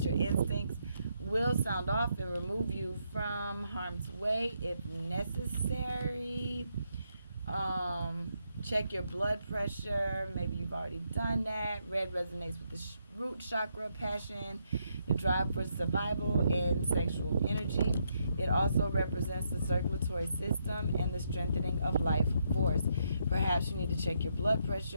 your instincts will sound off and remove you from harm's way if necessary. Check your blood pressure. Maybe you've already done that. Red resonates with the root chakra, passion, the drive for survival, and sexual energy. It also represents the circulatory system and the strengthening of life force. Perhaps you need to check your blood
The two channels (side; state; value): both; inverted; correlation -0.78